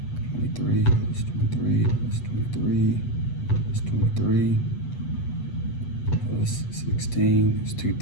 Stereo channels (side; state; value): right; late; 8.2 ms